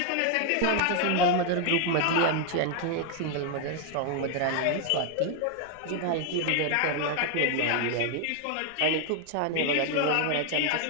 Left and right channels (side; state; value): both; different; correlation 0.00